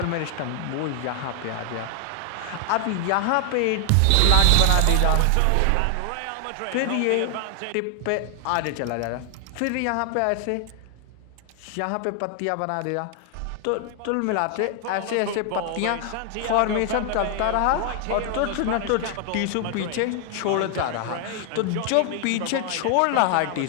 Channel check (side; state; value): both; different; correlation 0.00